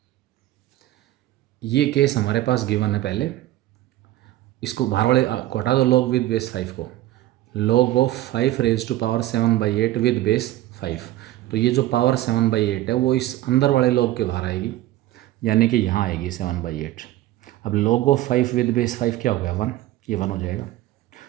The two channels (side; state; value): left; quieter; 15.1 dB